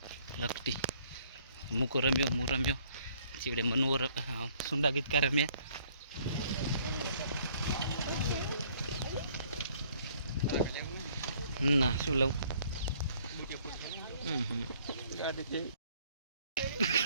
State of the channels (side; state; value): both; inverted; correlation -0.61